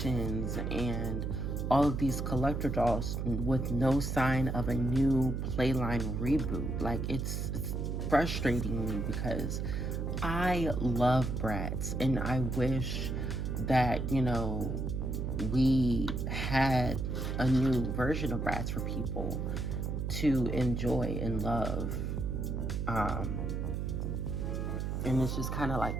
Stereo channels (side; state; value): right; noise; hum, 2 dB below the sound